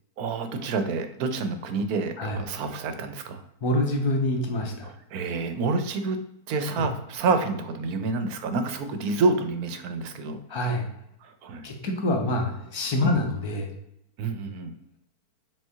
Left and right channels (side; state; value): left; late; 4.5 ms